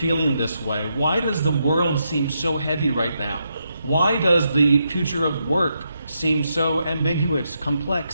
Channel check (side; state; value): both; inverted; correlation -0.81